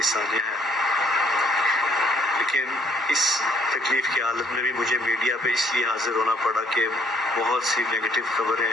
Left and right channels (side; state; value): both; normal; correlation 0.64